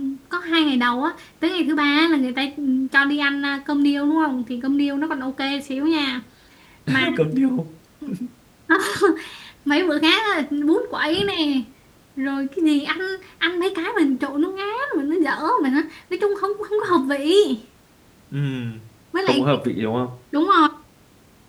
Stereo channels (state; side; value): identical; both; correlation 1.00